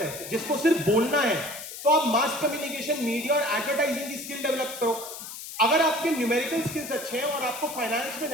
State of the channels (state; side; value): noise; left; hiss, 11 dB below the sound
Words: जिसको सिर्फ बोलना है, तो आप मास कम्युनिकेशन, मीडिया और एडवर्टाइजिंग की स्किल डेवलप करो। अगर आपके न्यूमेरिकल स्किल्स अच्छे हैं और आपको फाइनेंस में